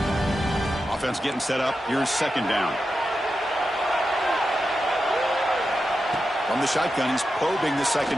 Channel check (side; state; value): both; normal; correlation 0.90